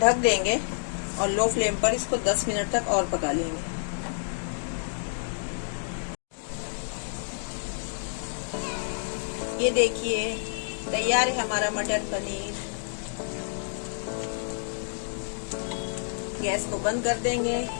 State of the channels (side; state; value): right; silent; digital silence